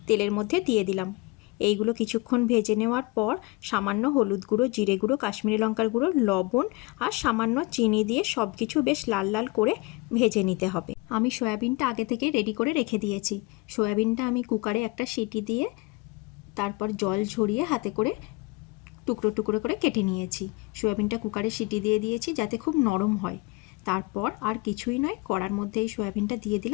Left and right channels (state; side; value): quieter; right; 24.1 dB